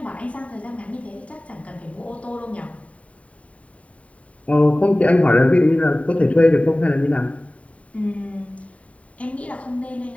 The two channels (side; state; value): right; late; 0.066 ms